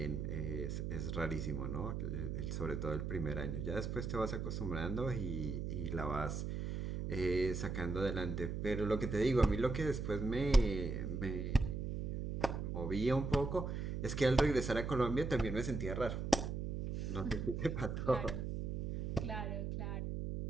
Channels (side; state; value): right; noise; hum, 3 dB below the sound